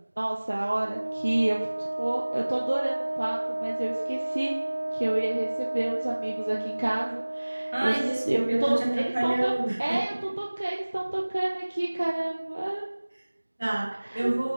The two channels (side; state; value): both; inverted; correlation -1.00